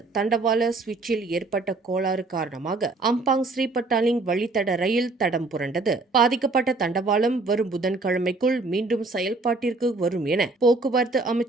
தண்டவாள சுவிட்சில் ஏற்பட்ட கோளாறு காரணமாக அம்பாங் ஸ்ரீபட்டாலிங் வழித்தட ரயில் தடம் புரண்டது. பாதிக்கப்பட்ட தண்டவாளம் வரும் புதன்கிழமைக்குள் மீண்டும் செயல்பாட்டிற்கு வரும் என போக்குவரத்து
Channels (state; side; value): quieter; left; 3.4 dB